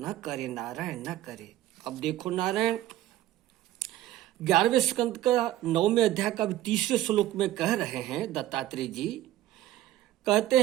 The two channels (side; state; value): left; quieter; 14.1 dB